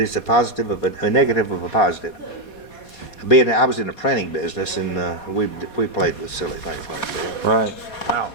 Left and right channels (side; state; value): right; late; 4.2 ms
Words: a positive of a negative of a positive. I was in the printing business, and we played with silly things like that. Right. Wow.